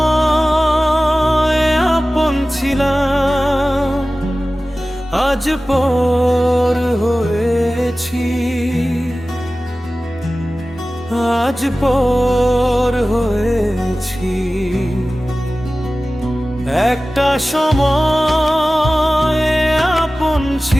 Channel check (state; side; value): normal; both; correlation 0.96